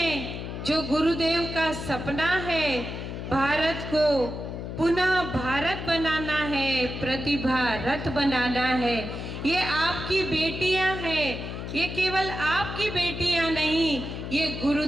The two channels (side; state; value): left; noise; hum, 7 dB below the sound